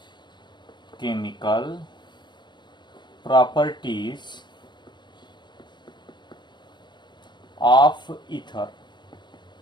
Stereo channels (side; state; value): right; late; 0.22 ms